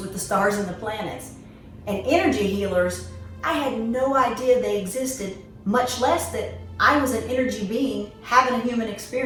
the stars and the planets. And energy healers, I had no idea they existed, much less that I was an energy being having a human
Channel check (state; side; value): identical; both; correlation 1.00